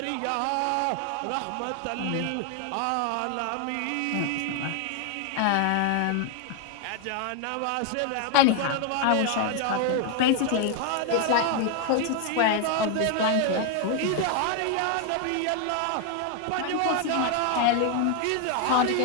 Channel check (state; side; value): different; both; correlation 0.00